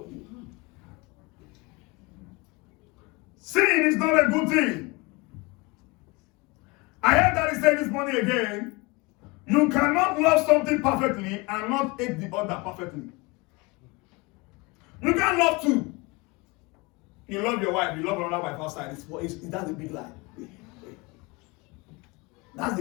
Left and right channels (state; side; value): quieter; right; 25.6 dB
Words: you. Sin is not a good thing. I heard that he said this morning again, you cannot love something perfectly and not hate the other perfectly. You can't love two. You love your wife, you love another wife outside. That's a big lie. That's